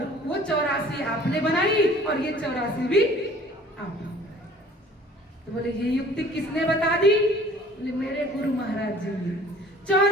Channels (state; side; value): normal; both; correlation 0.51